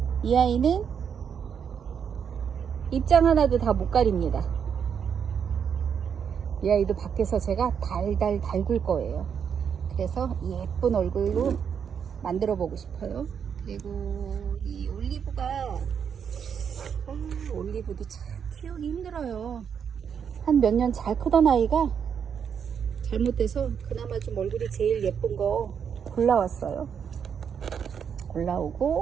이 아이는 입장 하나도 다 못 가립니다. 이 아이도 밖에서 제가 달달 달굴 거예요. 그래서 예쁜 얼굴로 만들어 보고 싶어요. 그리고 이 올리브가 올리브도 참 키우기 힘들어요. 한 몇 년 잘 크던 아이가 잘못돼서 그나마 좀 얼굴이 제일 예쁜 거 골라왔어요.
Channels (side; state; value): left; quieter; 7.4 dB